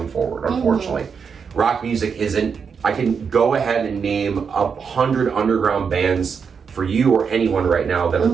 forward, unfortunately. Rock music isn't. I can go ahead and name 100 underground bands for you or anyone right now that are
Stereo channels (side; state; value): left; quieter; 6.2 dB